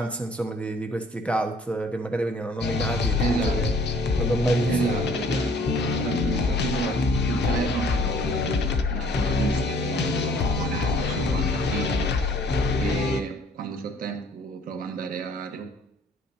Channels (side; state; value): both; normal; correlation 0.57